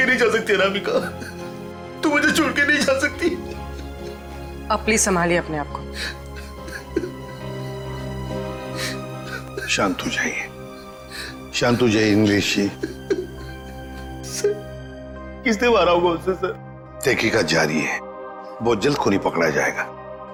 नहीं जा सकती। अनामिका, तू मुझे छोड़ के नहीं जा सकती। अब प्लीज संभालिए अपने आप को। शांत हो जाइए, शांत हो जाइए इंग्लिश जी। किसने मारा होगा उससे सर? तहकीकात जारी है, बहुत जल्द खूनी पकड़ा जाएगा।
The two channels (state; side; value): identical; both; correlation 1.00